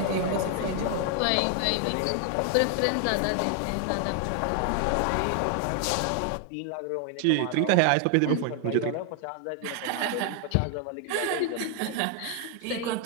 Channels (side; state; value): both; different; correlation 0.00